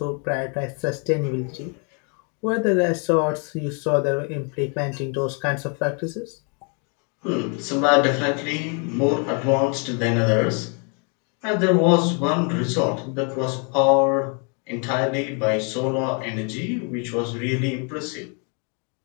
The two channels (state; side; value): quieter; right; 37.8 dB